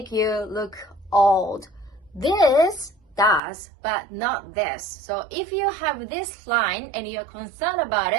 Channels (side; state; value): left; drops out; at 3.4 s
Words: you look old. This does, but not this. So if you have this line and you're concerned about